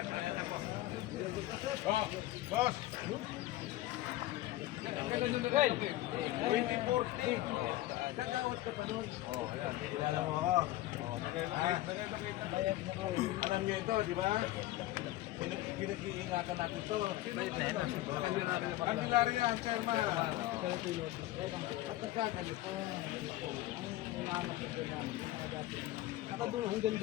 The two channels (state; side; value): quieter; right; 16.1 dB